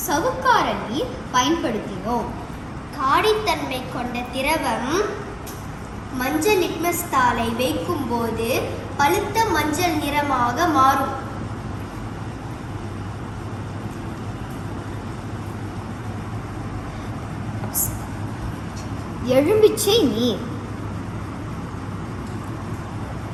சவுக்கார நீர் பயன்படுத்தினோம். காடித்தன்மை கொண்ட திரவம் மஞ்சள் லிட்மஸ் தாளை வைக்கும் போது பழுத்த மஞ்சள் நிறமாக மாறும். எலுமிச்சை நீர்,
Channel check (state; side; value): identical; both; correlation 1.00